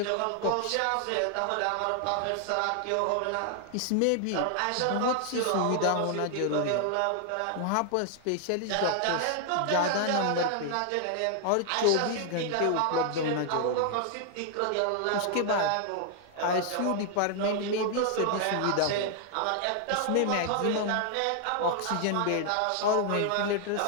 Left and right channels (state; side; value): different; both; correlation 0.00